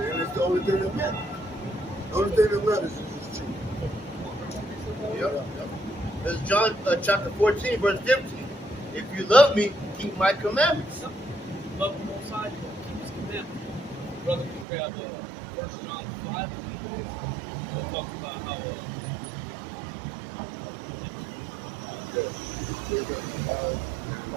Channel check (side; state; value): left; drops out; at 14.7 s